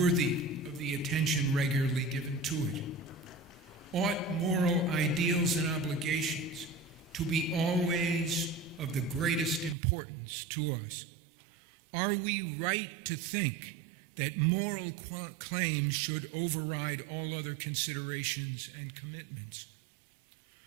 of the attention regularly given to it? Ought moral ideals and obligations to be always of the greatest importance to us? Are we right to think that moral claims should override all other considerations and commitments?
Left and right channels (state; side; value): drops out; left; at 9.8 s